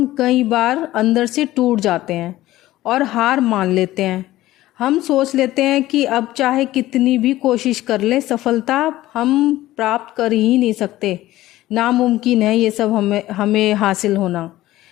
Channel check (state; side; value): quieter; right; 15.9 dB